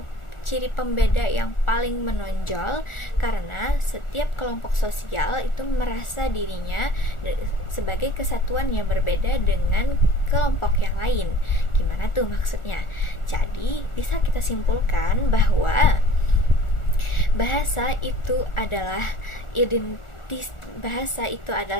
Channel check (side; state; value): right; late; 1.4 ms